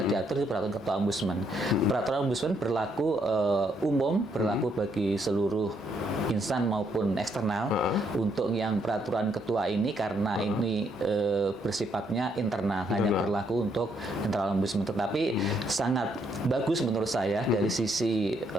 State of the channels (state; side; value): normal; both; correlation 0.73